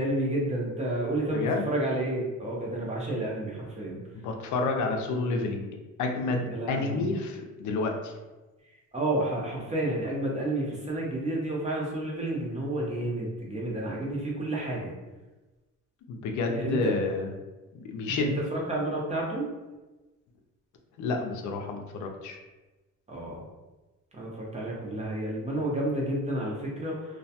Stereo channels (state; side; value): normal; both; correlation 0.31